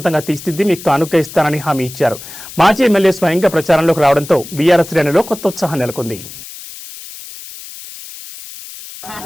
తీర్చిదిద్ది మీకు కానుక ఇస్తానని హామీ ఇచ్చారు. మాజీ ఎమ్మెల్యే స్వయంగా ప్రచారంలోకి రావడంతో బీఆర్ఎస్ శ్రేణిలో కొత్త ఉత్సాహం నెలకొంది.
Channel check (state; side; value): noise; left; hiss, 14 dB below the sound